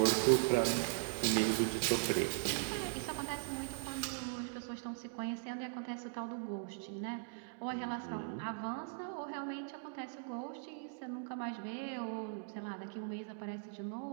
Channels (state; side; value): silent; left; digital silence